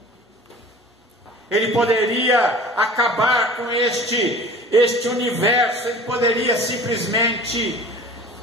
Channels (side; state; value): both; normal; correlation 0.42